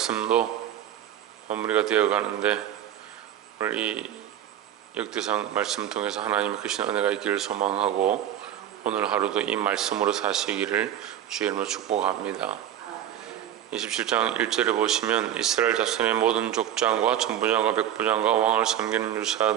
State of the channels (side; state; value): left; quieter; 10.9 dB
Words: 마무리가 되어 가는데 오늘 이 역대상 말씀 통해서 하나님의 크신 은혜가 있기를 소망하고 오늘 하루도 이 말씀으로 사시기를 주의 이름으로 축복합니다. 27장 1절에 보시면 이스라엘 자손의 모든 족장과 천부장과 백부장과 왕을 섬기는